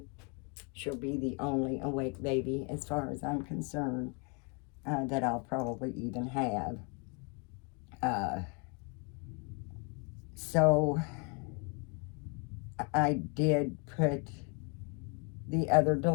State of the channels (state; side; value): quieter; right; 35.1 dB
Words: She'll be the only awake baby, as far as I'm concerned, that I'll probably even have. So I did put the other